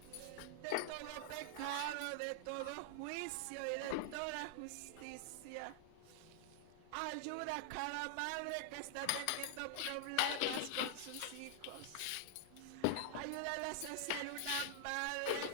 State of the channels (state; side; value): different; both; correlation 0.00